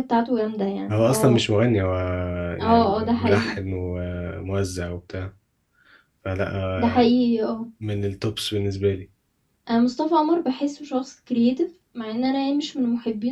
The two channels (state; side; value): identical; both; correlation 1.00